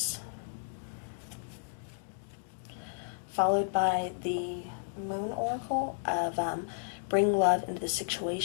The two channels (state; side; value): silent; right; digital silence